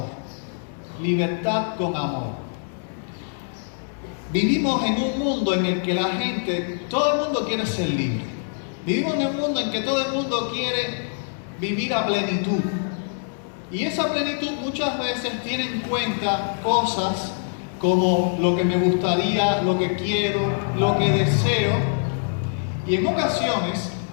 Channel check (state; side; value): silent; right; digital silence